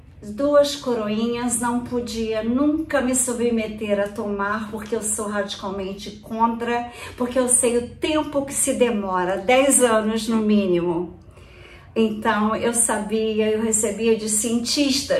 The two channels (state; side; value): identical; both; correlation 1.00